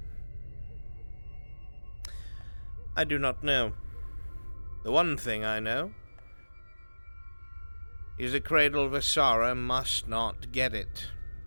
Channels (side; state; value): both; inverted; correlation -1.00